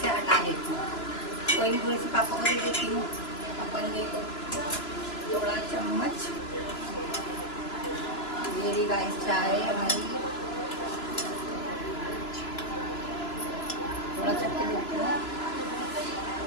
हटा लेती हूँ। कोई नहीं, थोड़ी सी पापा को दे देती हूँ, अपन देखो थोड़ा चम्मच। मेरी गाइस चाय हमारी थोड़ा चक्के देती हूँ,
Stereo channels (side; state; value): right; late; 3.0 ms